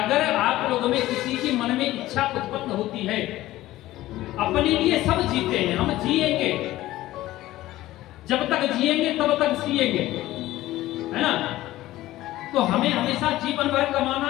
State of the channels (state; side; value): quieter; right; 16.0 dB